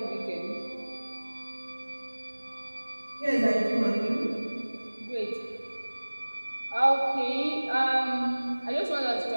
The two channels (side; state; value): both; inverted; correlation -1.00